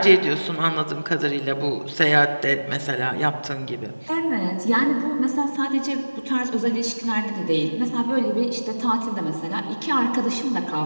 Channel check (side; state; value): both; inverted; correlation -1.00